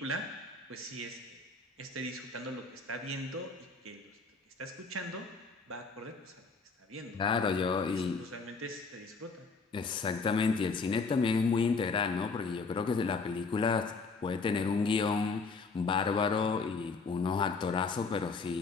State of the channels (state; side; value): quieter; right; 4.4 dB